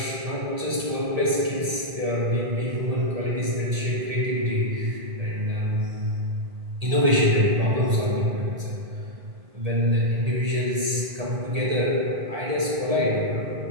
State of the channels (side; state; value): left; late; 1.8 ms